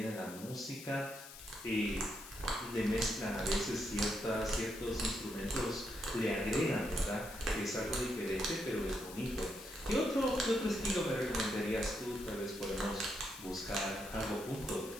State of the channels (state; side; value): noise; left; hiss, 14 dB below the sound